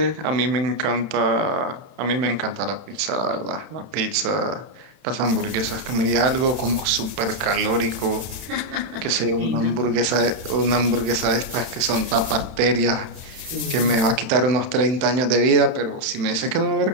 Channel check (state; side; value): late; left; 31 ms